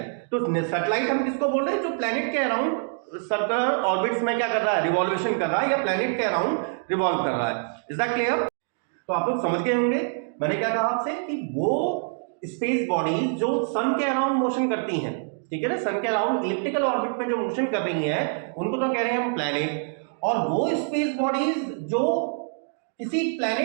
तो सैटेलाइट हम किसको बोल रहे हैं, जो प्लेनेट के अराउंड सर्कुलर ऑर्बिट्स में क्या कर रहा है, रिवॉल्वेशन कर रहा है, या प्लेनेट के अराउंड रिवॉल्व कर रहा है। Is that clear. तो आप लोग समझ गए होंगे मैंने क्या कहा आपसे, कि वो स्पेस बॉडीज जो सन के अराउंड मोशन करती हैं, ठीक है ना, सन के अराउंड इलिप्टिकल ऑर्बिट में जो मोशन कर रही हैं उनको तो कह रहे हैं हम प्लैनेट। और वो स्पेस बॉडीज जो किसी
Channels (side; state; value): left; silent; 60 dB below the other